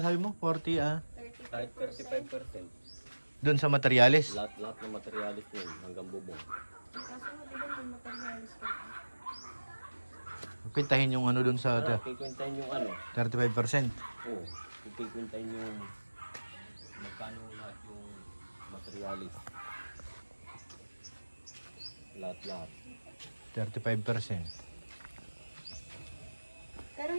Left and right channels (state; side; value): inverted; both; correlation -1.00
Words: mo? 40, kahit 35%. doon sa materialis. Lahat ng materialis yun hanggang bubong. Kaso di ba may materialis ka? Pintahin yung ano doon sa Kikwentahin yung ano. 35%. Oo. Kikwentahin yung magkano lahat yung materialis. Lahat. 35%. Pero